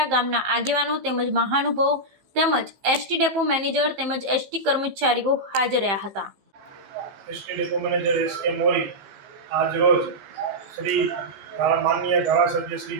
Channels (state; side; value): late; left; 15 ms